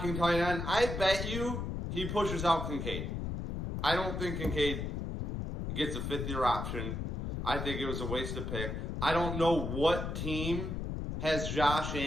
tight end. I bet you he pushes out Kincaid. I don't think Kincaid gets a fifth-year option. I think it was a wasted pick. I don't know what team has Josh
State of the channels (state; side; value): noise; left; rumble, 3 dB below the sound